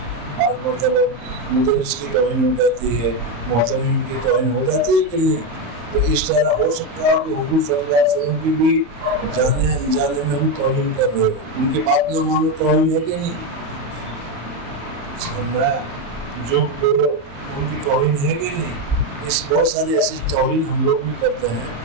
بعض مرتبہ مدرس کی توہین ہو جاتی ہے، محترم کی توہین ہو جاتی ہے کہ نہیں. تو اس طرح ہو سکتا ہے کہ حضور صلی اللہ علیہ وسلم کی بھی جانے انجانے میں ہم توہین کر رہے ہو. ان کی بات نہ مانو توہین ہے کہ نہیں؟ جو بولو ان کی توہین ہے کہ نہیں؟ اس بہت ساری ایسی توہین ہم لوگ بھی کرتے ہیں.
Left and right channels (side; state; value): left; late; 34 ms